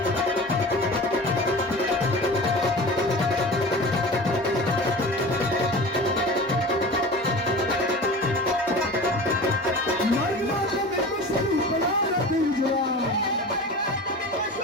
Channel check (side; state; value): both; normal; correlation 0.35